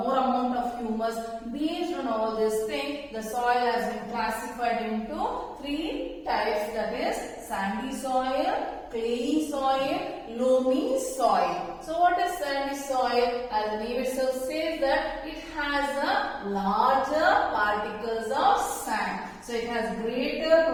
of humus. Based on all these things, the soil has been classified into 3 types, that is sandy soil, clayey soil, loamy soil. So what is sandy soil? As the name itself says that it has a larger particles of sand. So it has greater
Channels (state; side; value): identical; both; correlation 1.00